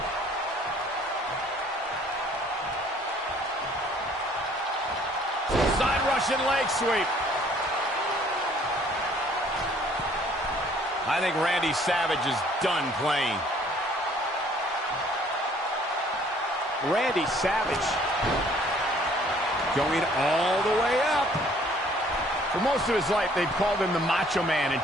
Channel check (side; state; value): both; normal; correlation 0.58